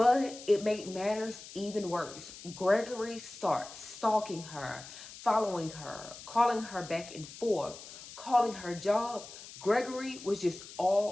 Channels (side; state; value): left; noise; hiss, 15 dB below the sound